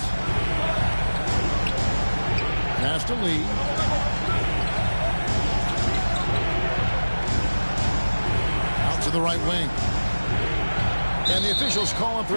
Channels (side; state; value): both; inverted; correlation -1.00